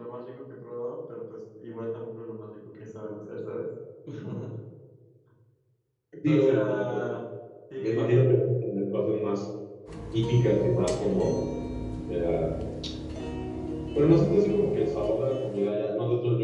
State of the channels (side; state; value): both; identical; correlation 1.00